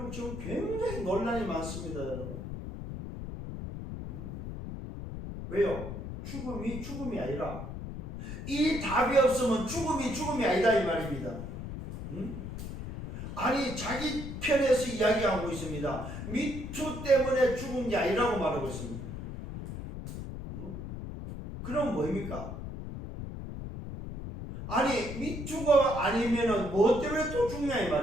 지금 굉장히 논란이 많습니다 여러분. 왜요? 죽음이 아니라 이 답이 없으면 죽음이 아니다 이 말입니다. 아니 자기 편에서 이야기하고 있습니다. 미투 때문에 죽은 게 아니라고 말하고 있습니다. 그럼 뭐입니까? 아니 미투가 아니면은 뭐 때문에 또 죽냐 이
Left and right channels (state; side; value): noise; left; rumble, 8 dB below the sound